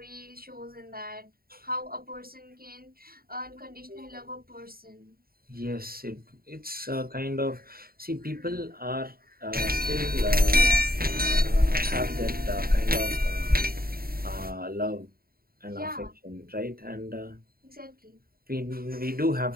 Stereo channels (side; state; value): left; late; 0.43 ms